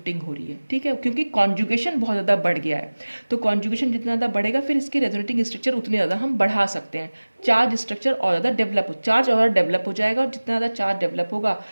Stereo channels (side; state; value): both; inverted; correlation -1.00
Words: हो रही है, ठीक है, क्योंकि कॉन्जुगेशन बहुत ज़्यादा बढ़ गया है। तो कॉन्जुगेशन जितना ज़्यादा बढ़ेगा फिर इसके रेजोनेटिंग स्ट्रक्चर उतने ज़्यादा हम बढ़ा सकते हैं, चार्ज स्ट्रक्चर और ज़्यादा डेवलप हो जाएगा, और जितना ज़्यादा चार्ज डेवलप होगा